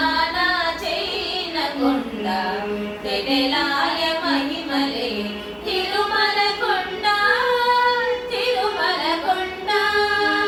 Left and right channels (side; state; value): both; identical; correlation 1.00